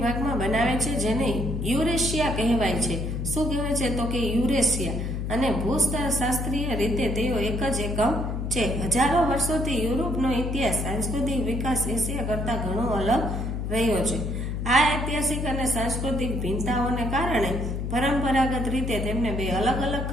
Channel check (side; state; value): left; noise; hum, 3 dB below the sound